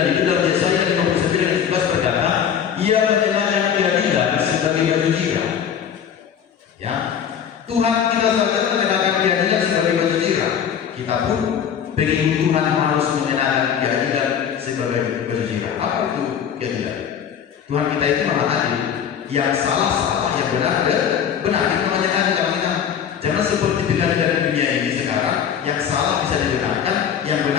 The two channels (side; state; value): right; quieter; 8.3 dB